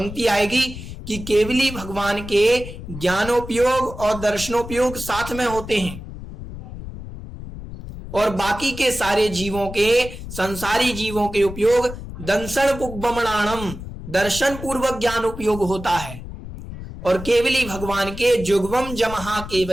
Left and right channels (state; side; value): noise; left; rumble, 11 dB below the sound